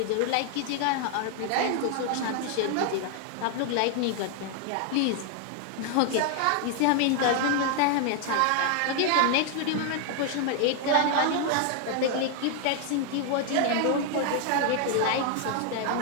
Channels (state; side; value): different; both; correlation 0.00